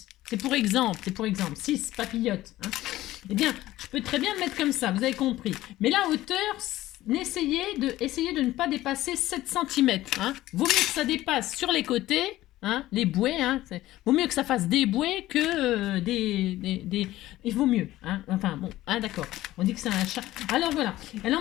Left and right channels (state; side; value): quieter; right; 15.8 dB